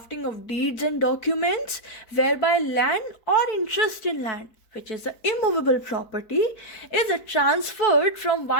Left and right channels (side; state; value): right; late; 4.6 ms